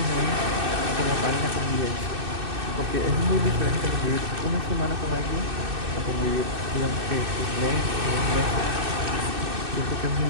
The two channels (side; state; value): left; late; 2.6 ms